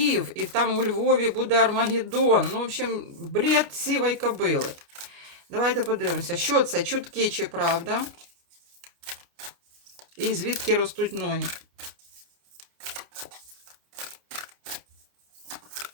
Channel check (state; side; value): late; left; 29 ms